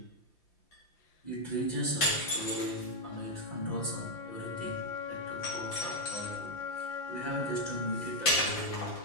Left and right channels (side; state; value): right; late; 5.8 ms